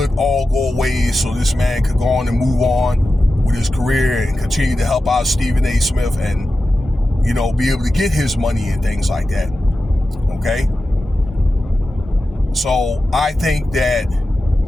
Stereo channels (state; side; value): normal; both; correlation 0.93